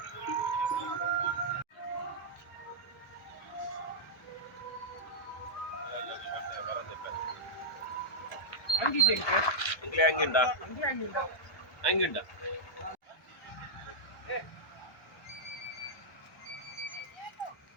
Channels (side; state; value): both; normal; correlation -0.08